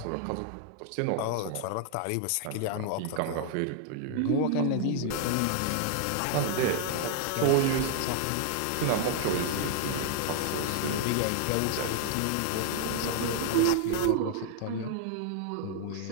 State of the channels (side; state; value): both; different; correlation -0.01